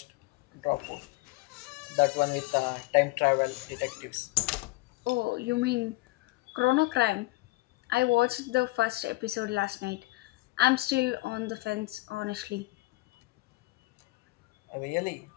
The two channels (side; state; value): right; quieter; 21.1 dB